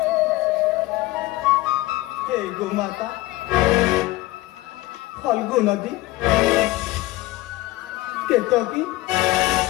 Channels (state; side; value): quieter; right; 18.8 dB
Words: हे ଗୋମାତା, ଫଲ୍ଗୁ ନଦୀ, କେତକୀ,